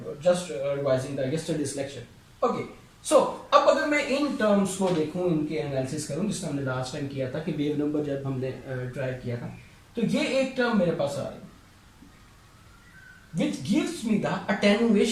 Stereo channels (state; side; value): identical; both; correlation 1.00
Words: just revising the yesterday's lecture. Okay, so अब अगर मैं in terms को देखूं, इनके analysis करूं, जिसने हमने last time किया था कि वेव नंबर जब हमने ट्राई किया था, तो ये एक टर्म मेरे पास आ रही है which gives me the